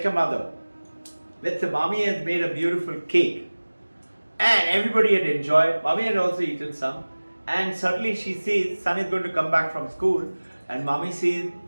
mother. Let's say mommy has made a beautiful cake and everybody had enjoyed. Mommy had also eaten some, and suddenly she sees son is going to come back from school and mommy sees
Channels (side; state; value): both; inverted; correlation -1.00